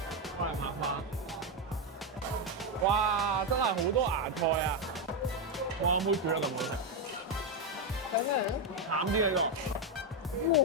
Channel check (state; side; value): normal; both; correlation 0.05